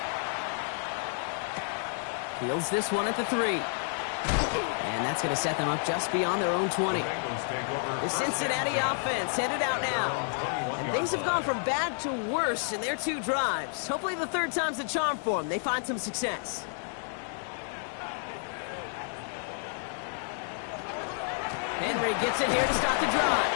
Fields this one at the 3. And that's going to set them up just beyond their own 20. The Cincinnati offense headed out now. And things have gone from bad to worse in their 2 drives. Hopefully the 3rd time's the charm for them. They find some success. Henry gets it here to start the drive.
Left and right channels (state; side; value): silent; right; 58 dB below the other